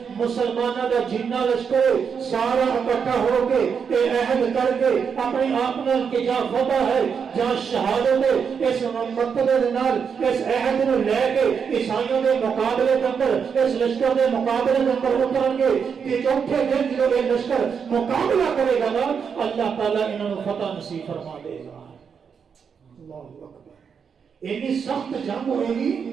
مسلمانوں کا جتنا لشکر سارا اکٹھا ہو کے عہد کر کے اپنی آپ کہ جہاں فتح ہے جہاں شہادت ہے اس مقصد اس عہد کو لے کے عیسائیوں کے مقابلے کے اندر اس لشکر کے مقابلے کے اندر اتریں گے کہ چوتھے دن جو یہ لشکر مقابلہ کرے گا نا اللہ تعالیٰ انہوں فتح نصیب فرما دے گا۔ اللہ اکبر، اتنی سخت جنگ ہوئے گی۔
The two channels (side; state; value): left; quieter; 6.6 dB